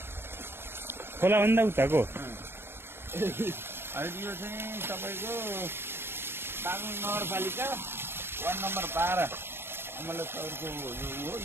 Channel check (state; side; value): late; left; 0.11 ms